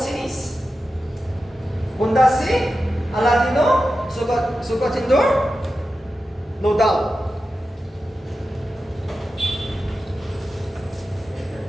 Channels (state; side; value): normal; both; correlation 0.92